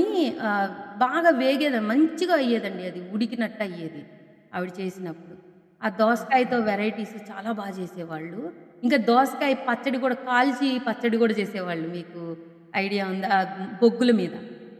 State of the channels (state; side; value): identical; both; correlation 1.00